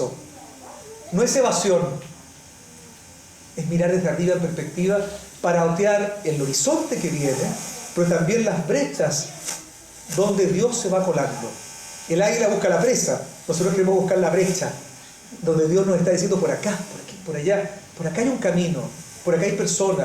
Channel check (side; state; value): both; identical; correlation 1.00